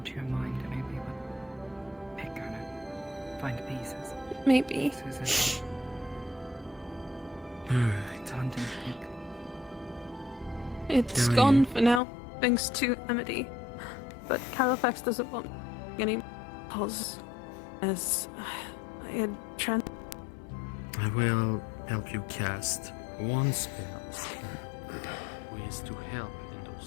to your mind, and maybe would pick on it. Find pieces. Maybe. Susan. Alright. It's a hunting pick. It's Yeah, gone for now, thanks to Amity. But Califax doesn't want any cause, as I had I will help you cast one spell. Ways to help in those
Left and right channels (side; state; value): right; drops out; at 12.0 s